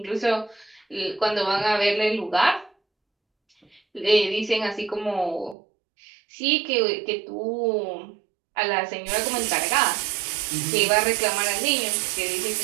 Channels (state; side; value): drops out; left; at 5.6 s